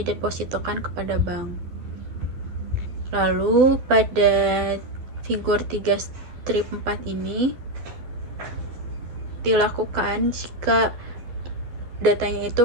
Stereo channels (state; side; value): late; left; 12 ms